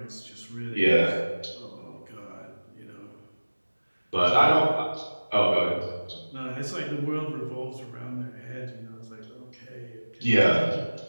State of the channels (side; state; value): both; inverted; correlation -1.00